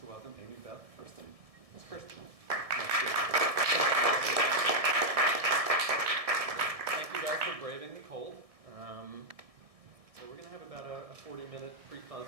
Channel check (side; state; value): left; late; 1.6 ms